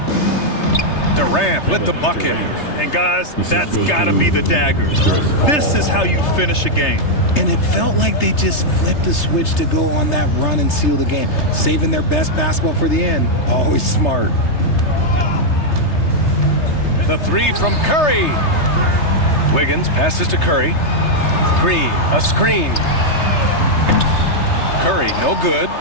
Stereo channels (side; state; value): right; late; 3.3 ms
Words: Durant with the bucket. And guys, that's gotta be the dagger. This is how you finish a game. And it felt like they just flipped the switch to go on that run and seal the game. Saving their best basketball for the end. Always smart. The three from Curry. Wiggins passes to Curry. Green, a screen. Curry, no good.